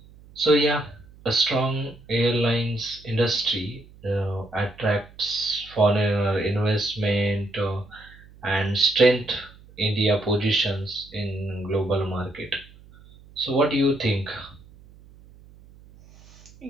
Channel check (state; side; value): noise; right; hum, 23 dB below the sound